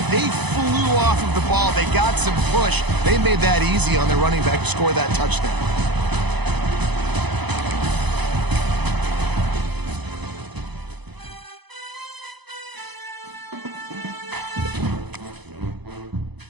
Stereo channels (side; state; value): left; late; 0.99 ms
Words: They flew off of the ball. They got some push. They made that easy on their running back to score that touchdown.